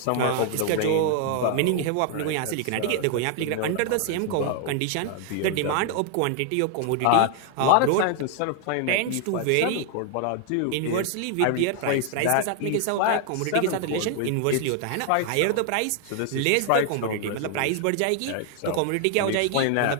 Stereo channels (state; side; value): different; both; correlation 0.00